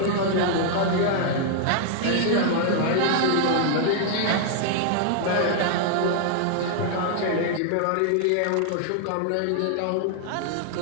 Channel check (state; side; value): different; both; correlation 0.00